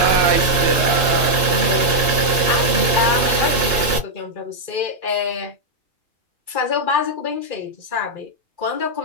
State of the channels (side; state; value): left; late; 2.7 ms